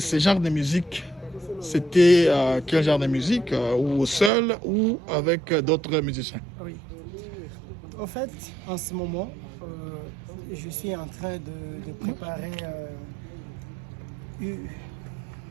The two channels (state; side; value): drops out; left; at 4.3 s